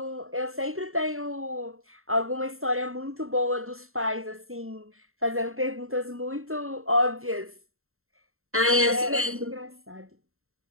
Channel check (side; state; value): left; late; 0.62 ms